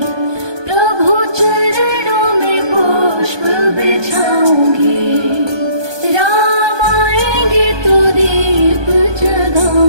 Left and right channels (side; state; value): left; late; 1.2 ms